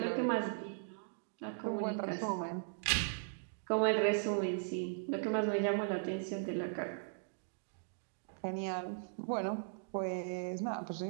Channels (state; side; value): silent; left; digital silence